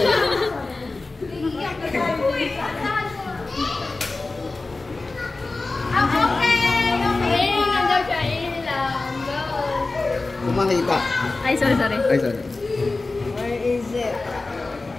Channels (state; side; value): quieter; right; 3.4 dB